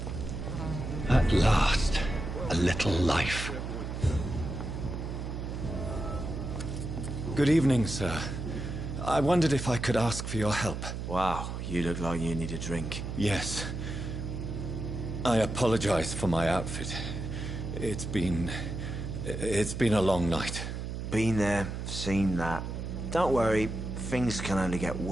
At last, a little life. Good evening, sir. I wondered if I could ask for your help. Wow, you look like you need a drink. Yes. I apologize for my outfit. It's been a long night. Been there, seen that. Don't worry, things can only get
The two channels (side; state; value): right; noise; hum, 5 dB below the sound